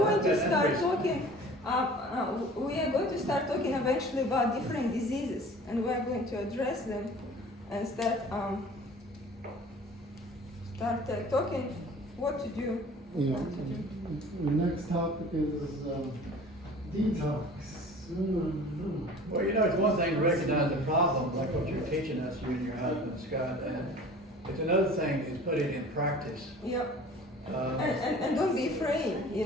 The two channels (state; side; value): normal; both; correlation 0.45